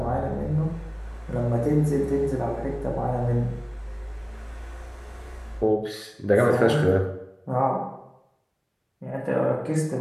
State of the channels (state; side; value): identical; both; correlation 1.00